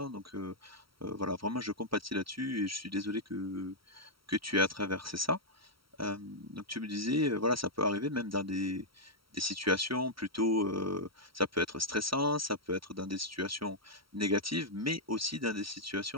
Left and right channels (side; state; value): left; late; 0.75 ms